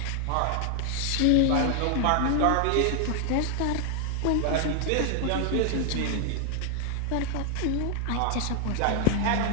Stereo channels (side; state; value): both; different; correlation 0.00